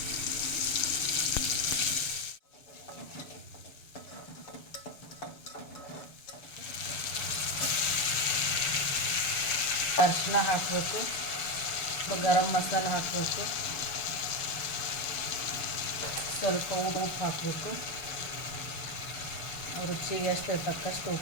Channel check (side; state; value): right; late; 7.0 ms